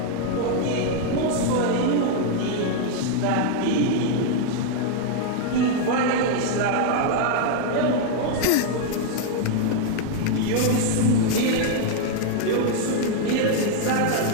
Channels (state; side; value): different; both; correlation 0.00